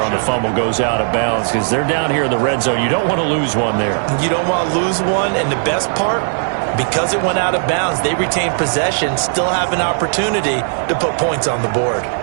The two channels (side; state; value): left; silent; 68 dB below the other